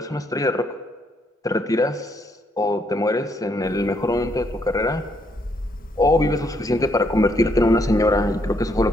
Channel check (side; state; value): both; normal; correlation 0.73